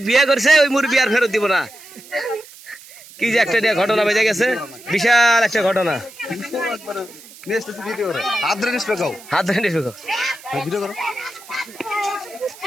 বিয়ে করছে, ওই মুরব্বী আর ফেরত দিব না। কি যে একটা ঘটনা বেজে গেছে, বিশাল একটা ঘটনা।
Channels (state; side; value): noise; right; hiss, 20 dB below the sound